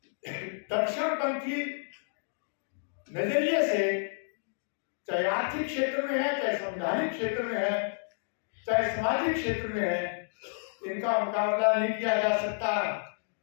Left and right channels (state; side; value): silent; right; digital silence